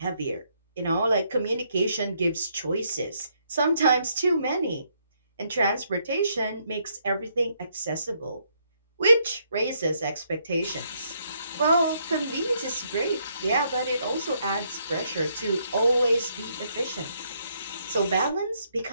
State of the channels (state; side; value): inverted; both; correlation -0.73